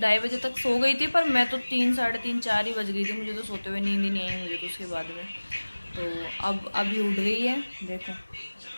बजे तक सो गई थी, पर मैं तो 3, साढ़े 3, 4 ही बज गई थी मुझे तो सोते हुए। नींद ही नहीं आई मुझे तो उसके बाद में। तो अब अभी उठ गई है, देखो।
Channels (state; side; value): inverted; both; correlation -1.00